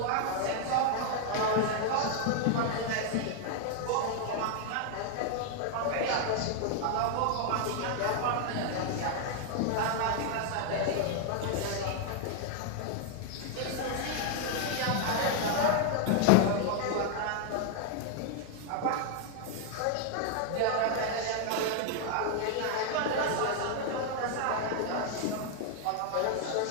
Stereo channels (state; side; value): different; both; correlation 0.00